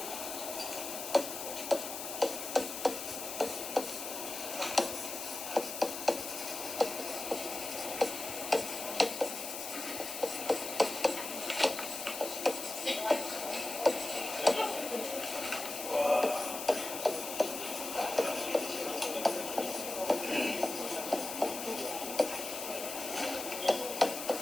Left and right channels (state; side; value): noise; left; hiss, 6 dB below the sound